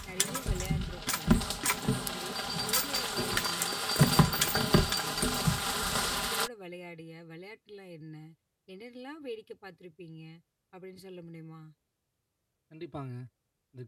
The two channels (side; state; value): both; identical; correlation 1.00